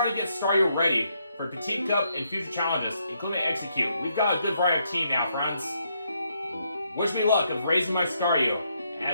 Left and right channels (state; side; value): inverted; both; correlation -0.76